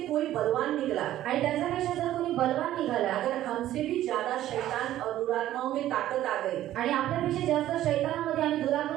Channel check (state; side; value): quieter; left; 13.3 dB